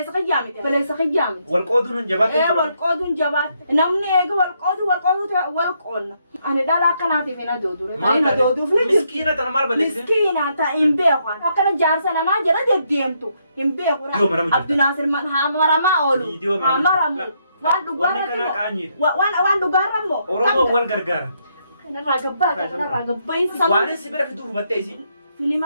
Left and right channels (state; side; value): inverted; both; correlation -0.75